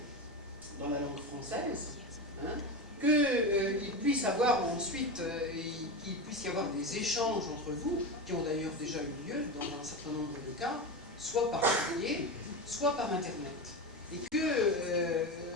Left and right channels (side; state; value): both; normal; correlation 0.20